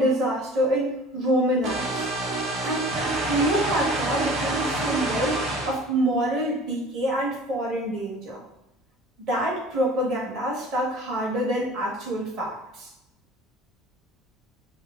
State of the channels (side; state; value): both; normal; correlation 0.44